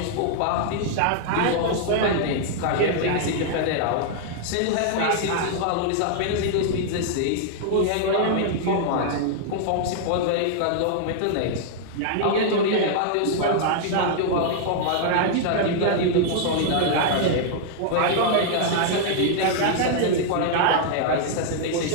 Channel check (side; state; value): both; different; correlation -0.01